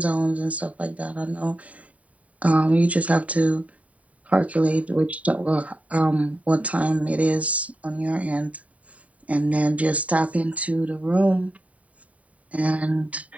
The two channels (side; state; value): left; late; 0.068 ms